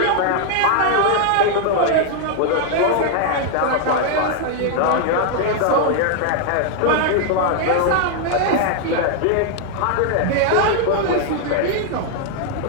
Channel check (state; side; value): different; both; correlation 0.00